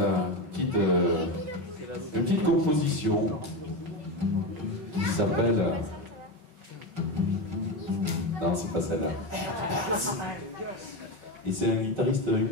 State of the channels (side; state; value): left; late; 5.3 ms